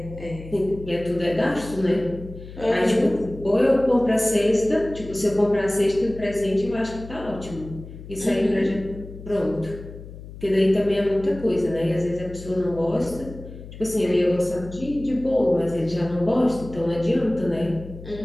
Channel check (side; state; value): left; noise; hum, 14 dB below the sound